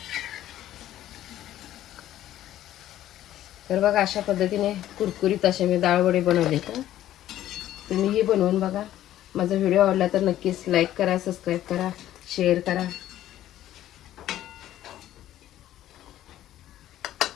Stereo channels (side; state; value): right; quieter; 13.0 dB